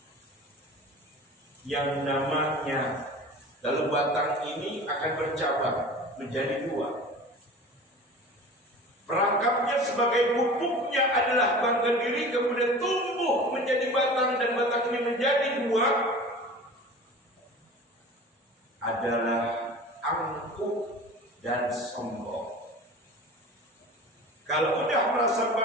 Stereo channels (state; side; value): normal; both; correlation 0.38